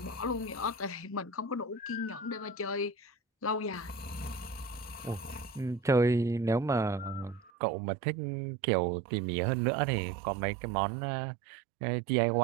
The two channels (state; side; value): drops out; left; at 7.5 s